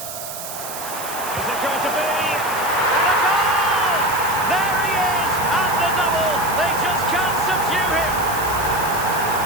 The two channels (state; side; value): noise; right; hiss, 9 dB below the sound